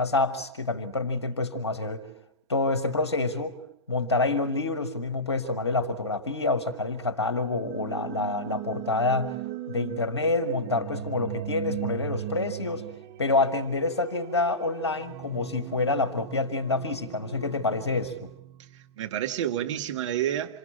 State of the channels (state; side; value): normal; both; correlation -0.20